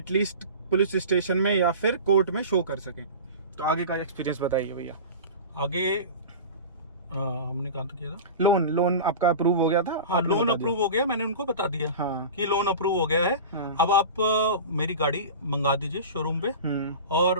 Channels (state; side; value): inverted; both; correlation -0.32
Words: पुलिस स्टेशन में या फिर कोर्ट में शो कर सकें। तो आगे का एक्सपीरियंस बताइए भैया। आगे हमने कहा किया था, लोन आपका अप्रूव हो गया था? हाँ, लोन अप्रूव हो गया, मैंने उनको बता दिया कि लोन अप्रूव हो गया है। अब आप मेरी गाड़ी मंगा दीजिए शोरूम पे, और